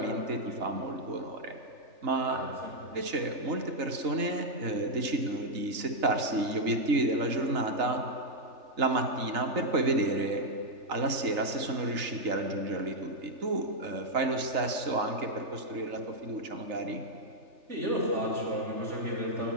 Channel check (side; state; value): left; late; 3.4 ms